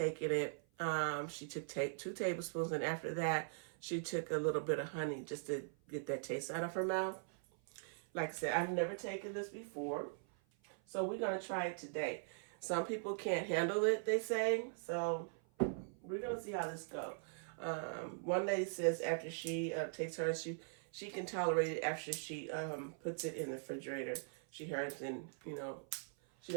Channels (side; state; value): left; silent; 50 dB below the other